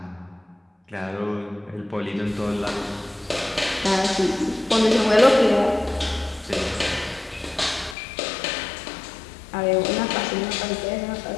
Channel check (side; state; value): right; drops out; at 8.0 s